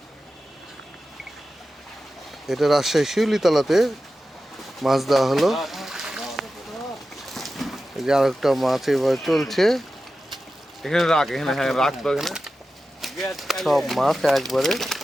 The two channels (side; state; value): both; normal; correlation 0.93